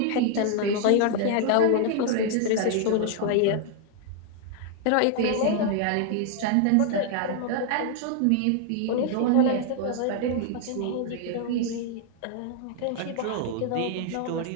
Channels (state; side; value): different; both; correlation 0.00